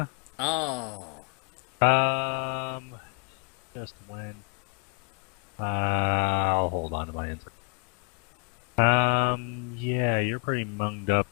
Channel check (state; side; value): quieter; right; 35.4 dB